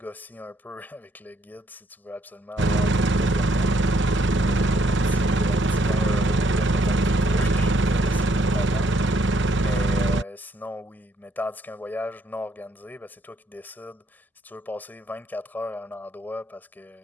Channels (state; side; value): normal; both; correlation 0.70